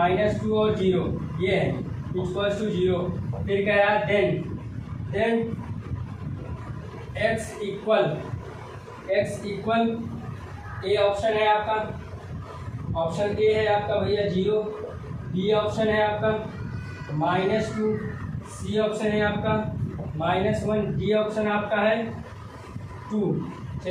और 0, ये है इक्वल्स टू 0। फिर कह रहा है then x equal A option है आपका, ऑप्शन ए है आपका भैया 0, बी ऑप्शन है आपका -2, सी ऑप्शन है आपका -1, डी ऑप्शन आपका है 2।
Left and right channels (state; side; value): identical; both; correlation 1.00